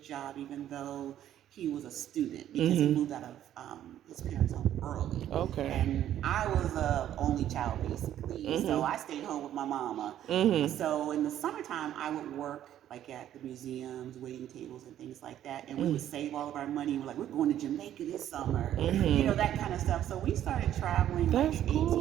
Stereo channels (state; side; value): quieter; left; 11.4 dB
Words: job, even though he was a student because he moved out of his parents' home early. Okay. And I was a only child basically, so I stayed home with my mama. So in the summertime, I would work like at the museums, waiting tables and things like that, and we would save all of our money. We're like, we're going to Jamaica this summer, that kind of stuff. So we started traveling like That's 18,